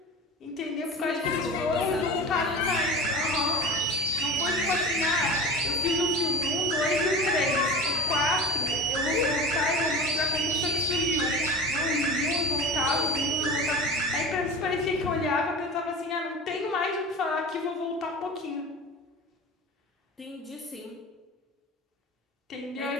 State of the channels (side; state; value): both; normal; correlation 0.32